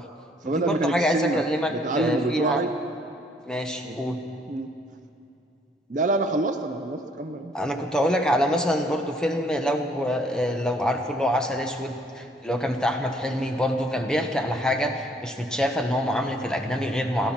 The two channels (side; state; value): both; normal; correlation 0.63